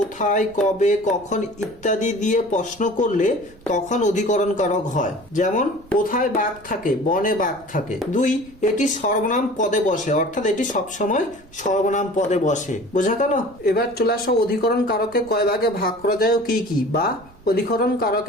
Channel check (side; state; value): right; noise; rumble, 25 dB below the sound